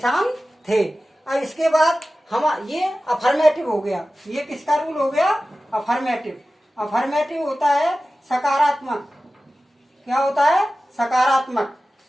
थे। अब इसके बाद हम ये अफर्मेटिव हो गया, ये किसका रूल हो गया? अफर्मेटिव। अफर्मेटिव होता है सकारात्मक। क्या होता है? सकारात्मक।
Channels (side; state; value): both; normal; correlation 0.95